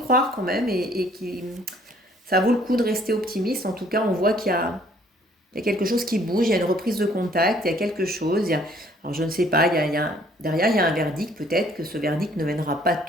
quand même et que ça vaut le coup de rester optimiste. En tout cas, on voit il y a quelque chose qui bouge, il y a une reprise de contact, il y a quelque chose. Alors je ne sais pas, derrière, il y a un verdict. Peut-être que ce verdict ne mènera pas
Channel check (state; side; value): normal; both; correlation 0.60